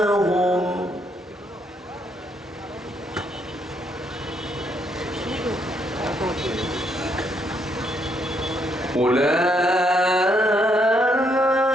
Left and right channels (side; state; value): both; normal; correlation 0.73